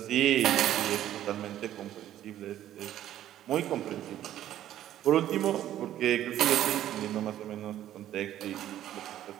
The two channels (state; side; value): quieter; left; 12.2 dB